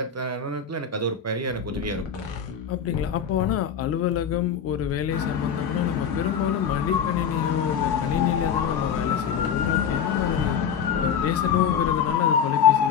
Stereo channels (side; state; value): right; quieter; 7.4 dB